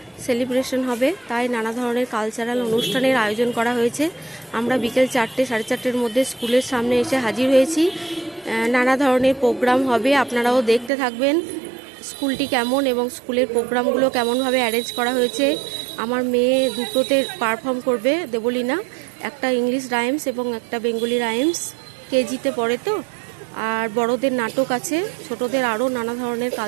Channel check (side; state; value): left; drops out; at 10.9 s